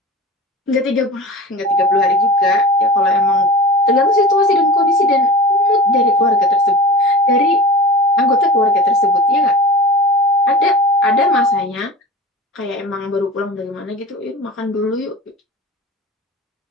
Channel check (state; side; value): normal; both; correlation 0.35